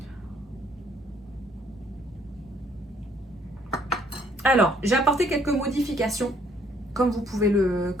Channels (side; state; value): both; normal; correlation 0.64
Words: Alors, j'ai apporté quelques modifications, comme vous pouvez le